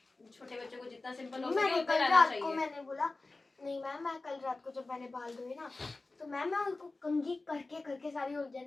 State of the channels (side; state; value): right; quieter; 3.3 dB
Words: छोटे बच्चों को जितना सिंपल हो सके मैंने उतना कल रहना रात को चाहिए। मैंने बोला नहीं मैम, मैं कल रात को जब मैंने बाल धोए ना तो मैम मैं उनको कंघी करके करके सारी